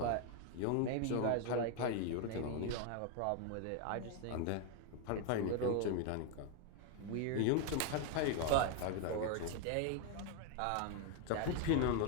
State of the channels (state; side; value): different; both; correlation 0.01